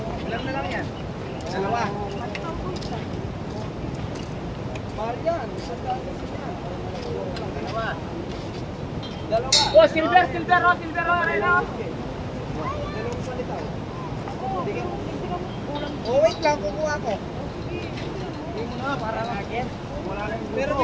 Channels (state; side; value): identical; both; correlation 1.00